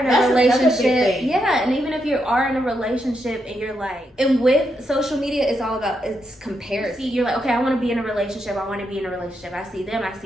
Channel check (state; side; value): normal; both; correlation 0.81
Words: a relationship, yeah, and even if you are in a relationship and you're like, and with social media, it's all about, it's comparison. You're like, okay, I want to be in a relationship, I see